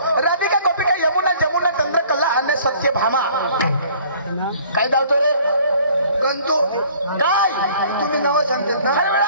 राधिका गोपिका यमुना जमुना चंद्रकला आणि सत्यभामा काय धावतो रे गंतो काय तुम्ही नाव सांगतात ना अरे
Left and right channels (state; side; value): inverted; both; correlation -0.54